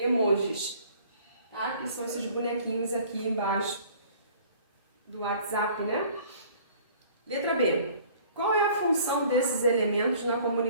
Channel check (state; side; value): inverted; both; correlation -0.52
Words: Tá? Que são esses bonequinhos aqui embaixo do WhatsApp, né? Letra B. Qual é a função desses elementos na